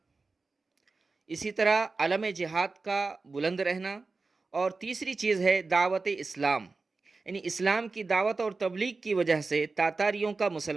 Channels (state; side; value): quieter; left; 3.9 dB